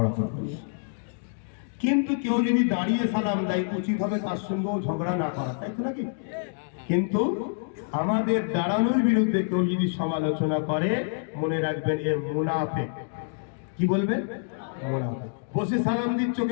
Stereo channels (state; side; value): silent; right; digital silence